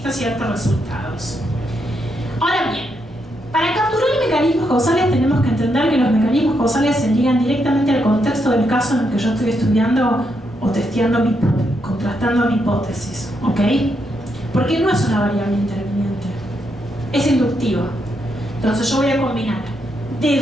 ciertos resultados. Ahora bien, para capturar mecanismos causales tenemos que entender que los mecanismos causales se ligan directamente al contexto del caso en el que yo estoy estudiando o testeando, contrastando mi hipótesis, ¿ok? Porque no es una variable interviniente, es inductiva. Entonces yo voy a combinar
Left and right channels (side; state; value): both; normal; correlation 0.80